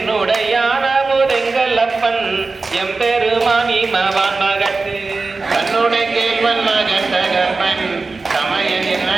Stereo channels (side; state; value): left; quieter; 3.9 dB